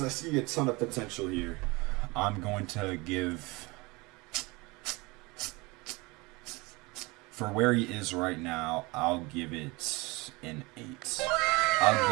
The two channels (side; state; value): left; quieter; 24.6 dB